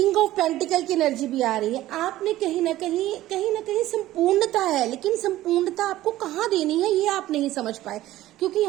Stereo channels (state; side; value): quieter; left; 15.1 dB